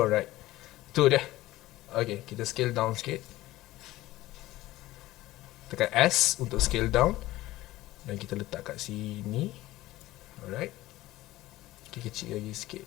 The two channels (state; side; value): quieter; right; 16.9 dB